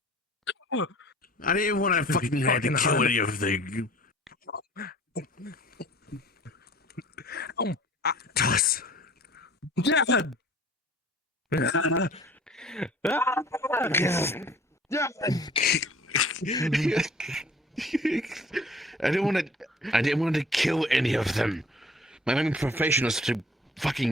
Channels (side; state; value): both; normal; correlation 0.49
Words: I didn't want to fucking have to kill any of them. Toss. Dad! I didn't want to kill any of them. My main profession is to